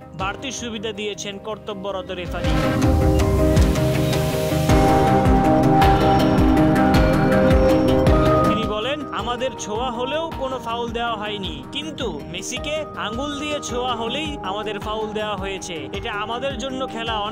বাড়তি সুবিধা দিয়েছেন কর্তব্যরত রেফারি। আমাদের ছোঁয়া হলেও কোনো ফাউল দেওয়া হয়নি, কিন্তু মেসিকে আঙ্গুল দিয়ে ছোঁয়া হলেই আমাদের ফাউল দেওয়া হয়েছে। এটা আমাদের জন্য খেলা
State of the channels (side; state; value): both; identical; correlation 1.00